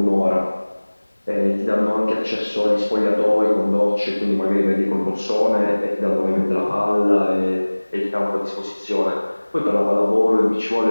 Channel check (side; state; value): both; inverted; correlation -1.00